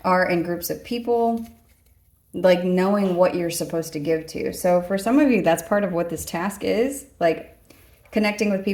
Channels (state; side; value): identical; both; correlation 1.00